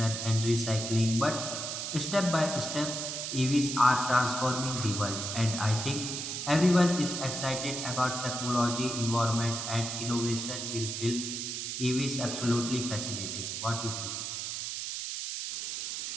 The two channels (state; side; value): noise; right; hiss, 4 dB below the sound